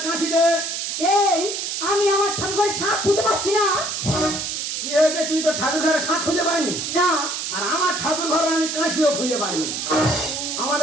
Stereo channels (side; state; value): right; noise; hiss, 3 dB below the sound